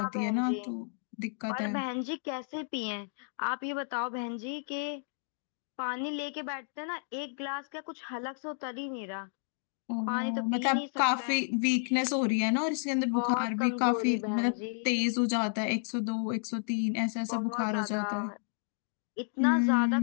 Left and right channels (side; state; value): right; silent; digital silence